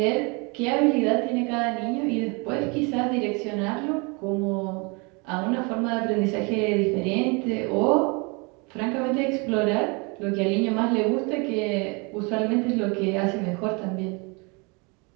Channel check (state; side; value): quieter; left; 30.5 dB